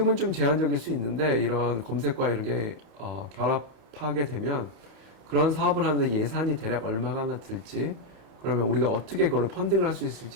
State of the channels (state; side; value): late; left; 31 ms